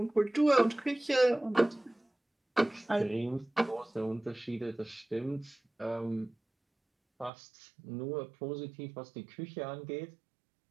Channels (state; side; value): drops out; left; at 7.3 s